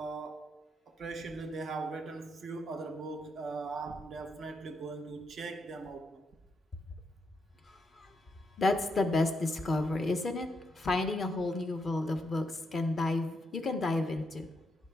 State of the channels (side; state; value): both; normal; correlation 0.80